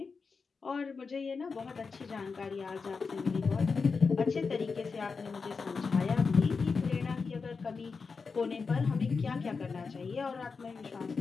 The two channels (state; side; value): quieter; right; 4.9 dB